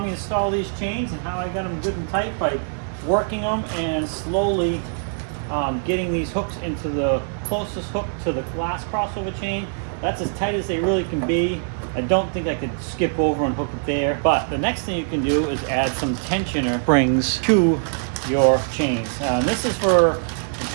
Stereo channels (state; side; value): silent; left; digital silence